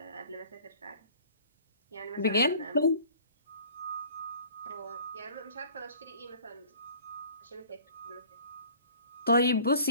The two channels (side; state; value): both; inverted; correlation -0.49